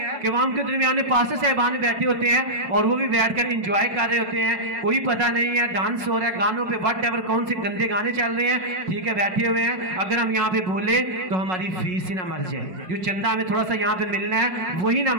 कि वहां उनके दरमियान में पास्टर साहबान बैठे होते हैं और वो भी बैठकर एंजॉय कर रहे होते हैं, कोई पता नहीं है, डांस हो रहा है, गानों पे वट एवर कौन से गंदे गाने चल रहे हैं, ठीक है, बैठे हुए हैं। अगर हम यहाँ पे बोले तो हमारी फीस ही ना मर जाए, जो चंदा हमें थोड़ा सा यहाँ पे मिलना है वही ना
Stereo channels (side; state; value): left; late; 5.4 ms